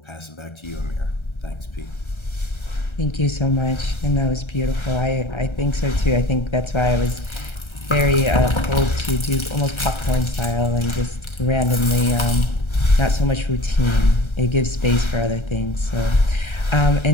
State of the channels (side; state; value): right; late; 1.3 ms